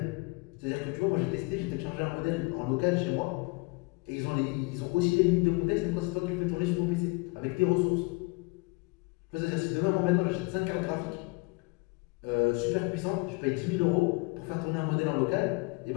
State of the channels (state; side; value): quieter; right; 27.1 dB